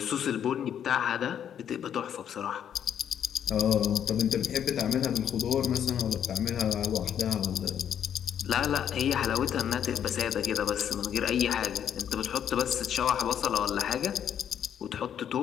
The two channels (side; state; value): right; quieter; 9.2 dB